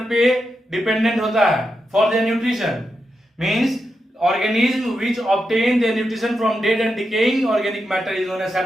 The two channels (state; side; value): normal; both; correlation 0.87